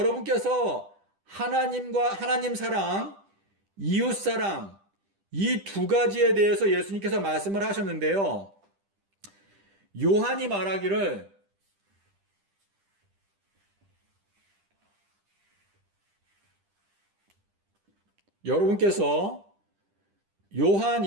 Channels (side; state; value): left; late; 10 ms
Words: 하나님 사랑, 이웃 사랑, 이 두 가지에 대해서 예수님께서 말씀을 하셨는데요. 요한이 말하기를 여러분께서 요한